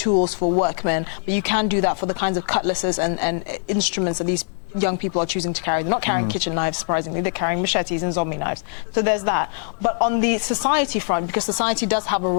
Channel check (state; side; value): silent; right; digital silence